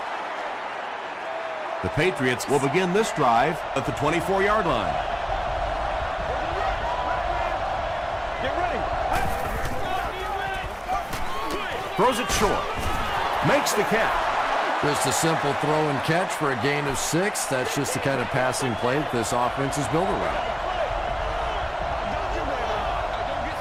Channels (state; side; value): identical; both; correlation 1.00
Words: The Patriots will begin this drive at the 24-yard line. Get ready. Throws it short. Makes the catch. Just a simple throw and catch for a gain of 6. That's just the kind of passing play that this offense is built around.